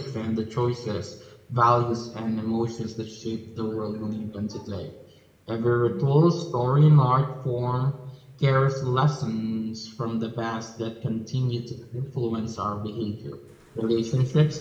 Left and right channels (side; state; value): both; identical; correlation 1.00